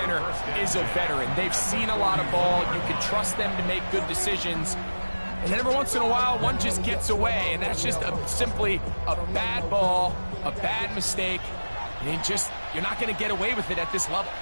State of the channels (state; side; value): inverted; both; correlation -1.00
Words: is a veteran. They've seen a lot of ball. You can trust them to make good decisions. And then every once in a while, one just gets away, and that's just simply a bad ball, a bad mistake, and you're not going to get away with it at this level.